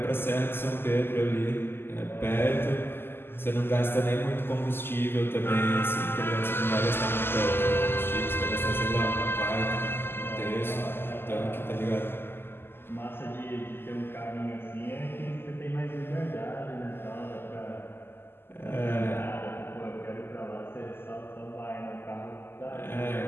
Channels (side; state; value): right; late; 0.11 ms